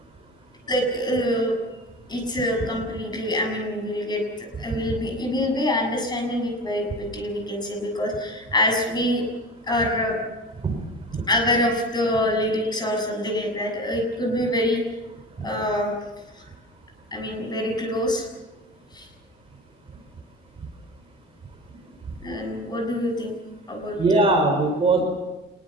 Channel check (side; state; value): both; normal; correlation 0.33